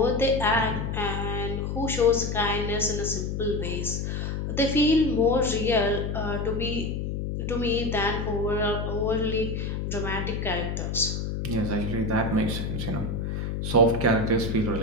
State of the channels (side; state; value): left; noise; hum, 3 dB below the sound